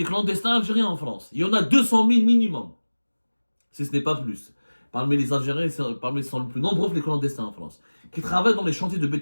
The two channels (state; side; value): inverted; both; correlation -1.00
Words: clandestins algériens en France, il y en a 200 000 minimum. Si ce n'est pas plus. Parmi les Algériens, ils sont les plus nombreux les clandestins en France, qui travaillent dans les chantiers de